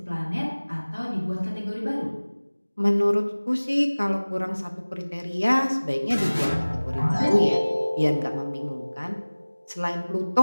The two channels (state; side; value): inverted; both; correlation -1.00